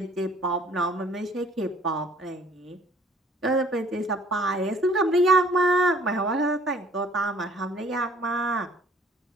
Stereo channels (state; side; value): normal; both; correlation 0.55